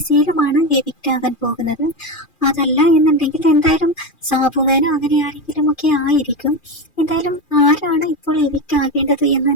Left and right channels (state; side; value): late; right; 2.4 ms